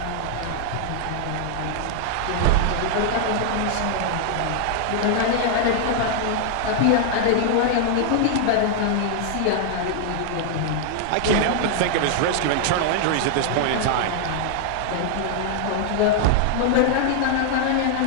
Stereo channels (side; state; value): both; different; correlation 0.00